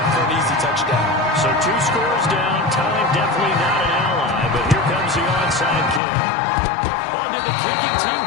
for an easy touchdown. So 2 scores down, time definitely not an ally, but here comes the onside kick. Oh, did the kicking team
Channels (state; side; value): drops out; right; at 6.0 s